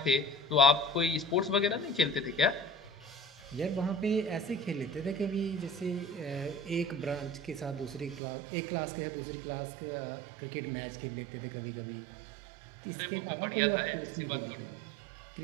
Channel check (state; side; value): drops out; left; at 8.2 s